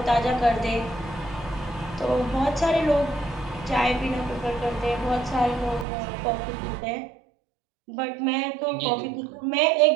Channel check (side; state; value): left; drops out; at 5.9 s